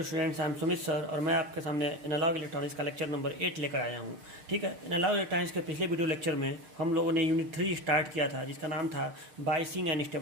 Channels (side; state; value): left; late; 6.6 ms